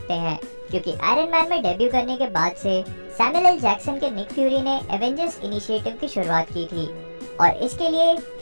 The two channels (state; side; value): inverted; both; correlation -1.00